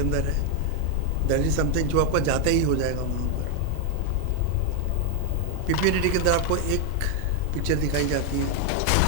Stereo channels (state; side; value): different; both; correlation 0.01